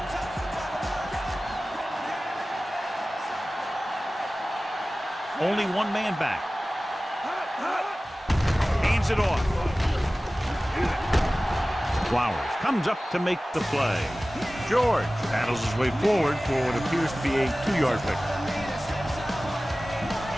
Only one man back. Hands it off. Flowers comes up to make the play. George paddles his way forward for what appears to be a 2-yard pickup.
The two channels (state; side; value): normal; both; correlation 0.97